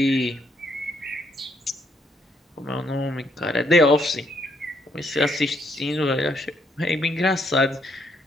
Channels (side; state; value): both; normal; correlation 0.72